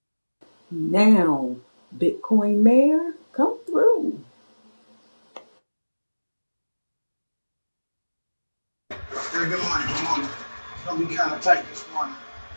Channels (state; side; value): inverted; both; correlation -1.00